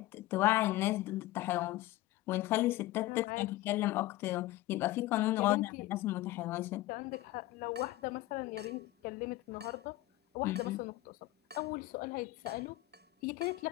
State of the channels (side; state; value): right; quieter; 17.2 dB